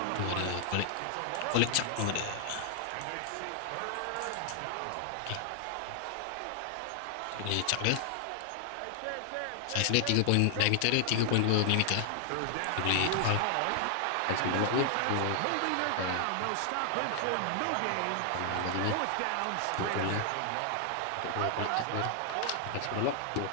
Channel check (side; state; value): both; different; correlation 0.00